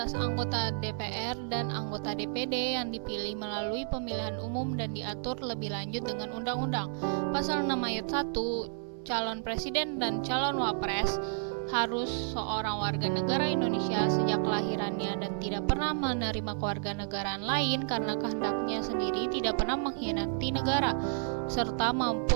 anggota DPR dan anggota DPD yang dipilih melalui pemilihan umum dan diatur lebih lanjut dengan undang-undang. Pasal 6 ayat 1, calon presiden dan calon wapres harus seorang warga negara Indonesia sejak kelahirannya dan tidak pernah menerima kewarganegaraan lain karena kehendaknya sendiri tidak pernah mengkhianati negara, serta mampu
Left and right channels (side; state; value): left; silent; 57 dB below the other